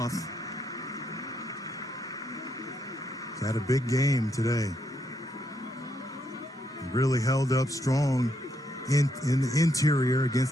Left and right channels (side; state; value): both; normal; correlation 0.77